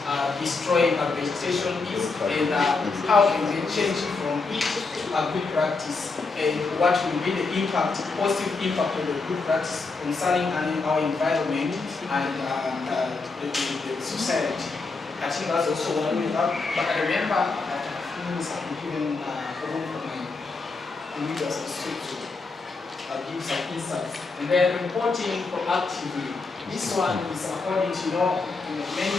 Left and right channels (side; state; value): right; quieter; 4.0 dB